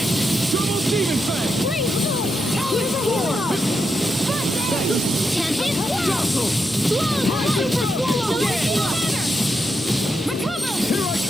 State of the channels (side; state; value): both; normal; correlation 0.84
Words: Double Demon Fang.